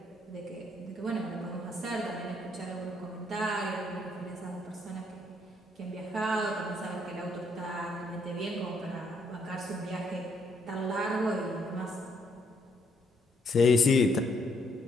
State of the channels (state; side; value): normal; both; correlation 0.71